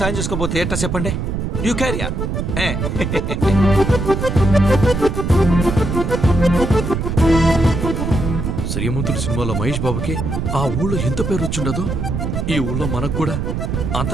చేసుకోకపోతే ఎట్టా చెప్పండి. You carry on. శ్రీమంతుడి సినిమాలో మహేష్ బాబుకి ఆ ఊళ్ళో ఎంత పేరు వచ్చిండదో, ఈ ఊళ్ళో మనకు కూడా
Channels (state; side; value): noise; right; rumble, 2 dB below the sound